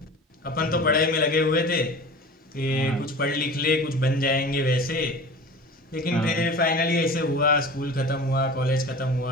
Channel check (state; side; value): normal; both; correlation 0.37